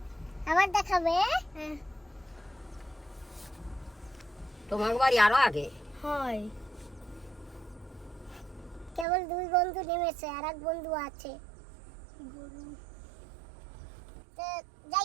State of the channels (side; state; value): left; drops out; at 9.1 s